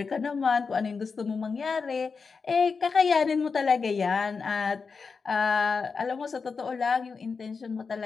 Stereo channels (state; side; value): quieter; right; 5.0 dB